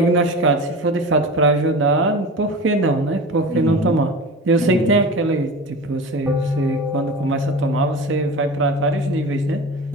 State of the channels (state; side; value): normal; both; correlation 0.33